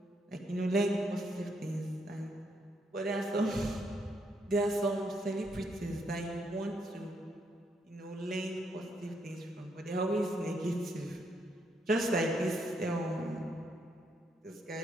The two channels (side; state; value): both; normal; correlation 0.76